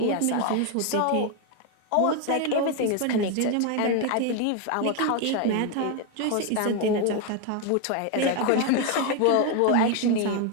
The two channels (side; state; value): both; different; correlation 0.01